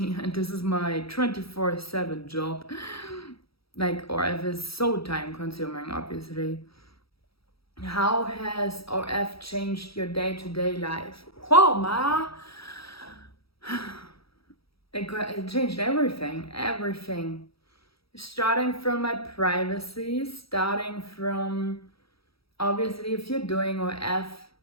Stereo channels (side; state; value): right; late; 0.76 ms